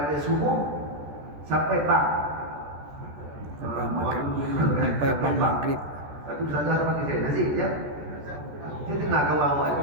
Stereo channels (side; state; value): left; late; 14 ms